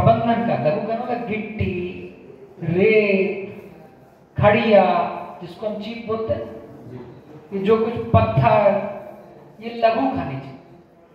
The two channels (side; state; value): both; identical; correlation 1.00